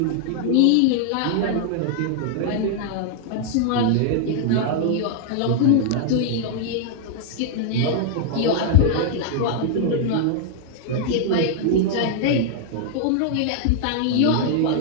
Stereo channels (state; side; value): different; both; correlation -0.01